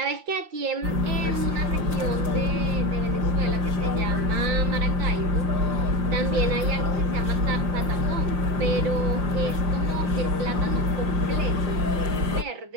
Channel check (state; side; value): late; left; 5.7 ms